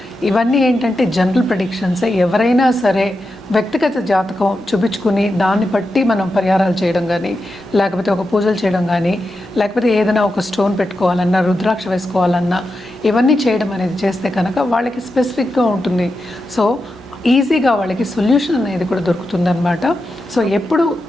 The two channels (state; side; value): normal; both; correlation 0.89